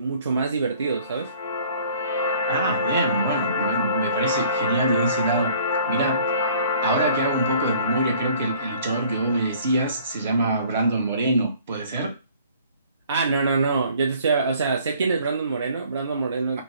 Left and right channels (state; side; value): inverted; both; correlation -0.55